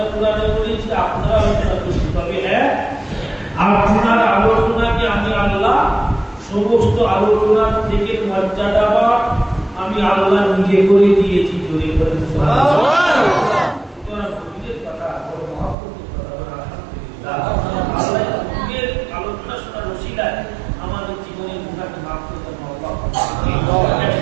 কুরআনে করেছি, আপনারা আলোচনা করছি, তবে হ্যাঁ আপনার আলোচনাকে আমি আল্লাহ সমস্ত আলোচনার থেকে মর্যাদা আমি আল্লাহ নিজে করে দিয়েছি। জোরে বলেন সুবহানাল্লাহ। তোমরা নবীদের কথা বড় মহব্বতের কথা বলে আলহামদুলিল্লাহ। আল্লাহ নবীর আলোচনা শোনার ওসিলায় আমাদের জীবনের গুনাহকে মাফ করতে আল্লাহ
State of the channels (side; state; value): left; drops out; at 15.8 s